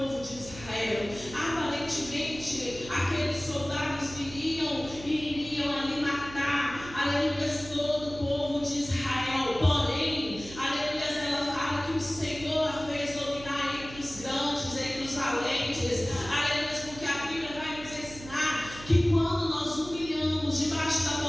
de Israel. Aparentemente aqueles soldados viriam e iriam ali matar, aleluias, todo o povo de Israel. Porém, aleluias, ela fala que o Senhor a fez dominar entre os grandes, entre os valentes. Aleluias, porque a Bíblia vai nos ensinar que quando nós humilhamos debaixo da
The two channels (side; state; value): right; noise; hum, 15 dB below the sound